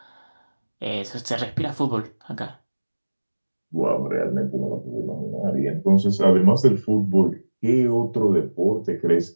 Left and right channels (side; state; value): both; inverted; correlation -1.00